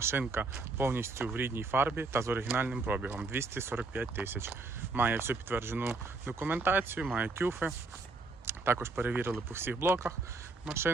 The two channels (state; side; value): quieter; left; 3.7 dB